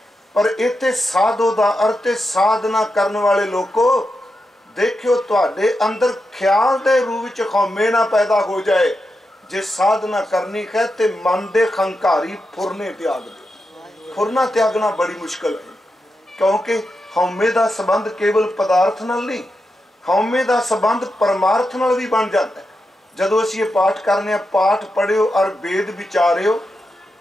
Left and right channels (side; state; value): both; normal; correlation 0.88